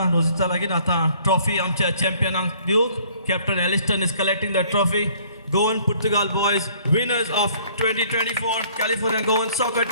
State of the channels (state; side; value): inverted; both; correlation -0.58